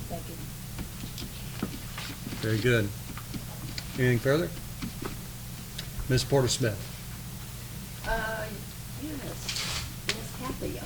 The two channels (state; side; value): identical; both; correlation 1.00